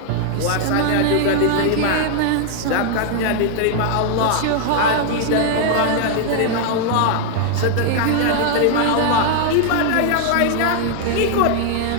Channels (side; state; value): both; different; correlation 0.00